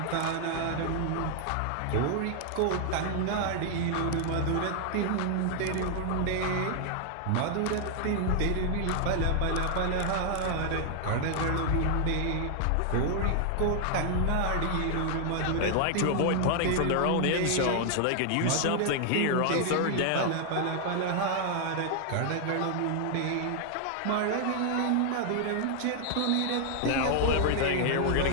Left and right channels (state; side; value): different; both; correlation 0.00